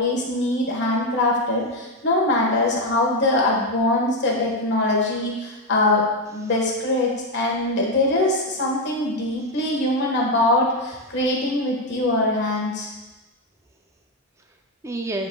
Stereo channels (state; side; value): normal; both; correlation 0.06